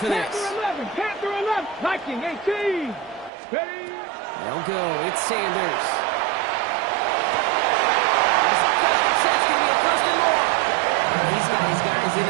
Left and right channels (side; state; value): left; drops out; at 3.3 s